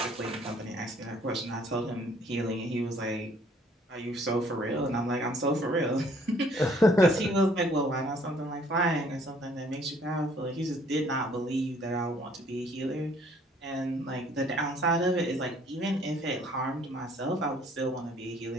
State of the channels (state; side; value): normal; both; correlation 0.60